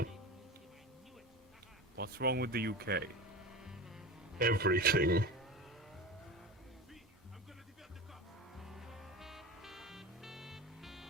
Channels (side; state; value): both; normal; correlation 0.29